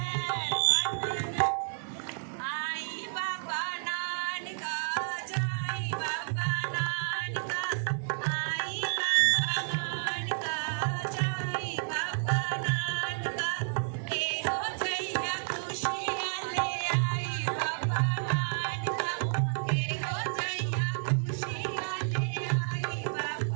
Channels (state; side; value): silent; left; digital silence